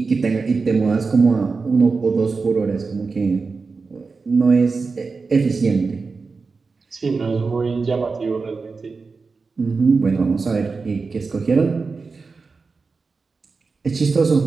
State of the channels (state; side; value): quieter; left; 4.4 dB